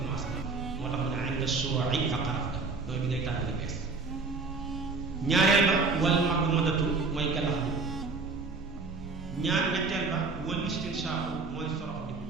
moo tax mu ne inda shuru'i fa xaraf ga mooy bi ngay tàmbali bees ñaareel ba wal madmadatu mooy galax bi ñetteel ba wal istinshaaku mooy sorox di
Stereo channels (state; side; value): quieter; left; 4.1 dB